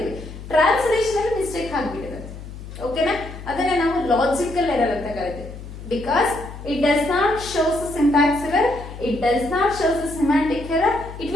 ಟ್ರಾನ್ಸ್ಲೇಷನ್ ಅಲ್ಲಿ ಮಿಸ್ಟೇಕ್ ಆಗಿಬಿಟ್ಟಿರುತ್ತೆ. ಓಕೆನಾ? ಅದನ್ನ ನಾವು ಲಾಜಿಕಲ್ ಎರರ್ ಅಂತ ಕರಿತೀವಿ. Because it does not show the syntax error, it does not show the semantic error. It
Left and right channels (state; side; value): noise; left; hum, 12 dB below the sound